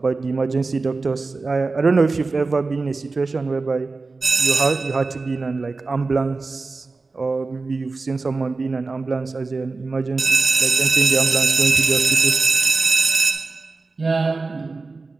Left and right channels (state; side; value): quieter; left; 3.8 dB